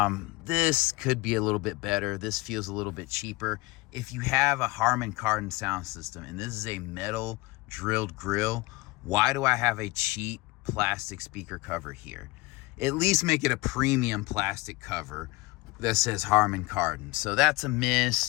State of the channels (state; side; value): quieter; right; 22.7 dB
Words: This could be a little bit better. This feels a little bit cheaper. If you have a Harman Kardon sound system and this is a metal drilled grill, why do I have a cheap plastic speaker cover here? At least make it a premium plastic cover that says Harman Kardon. So that's a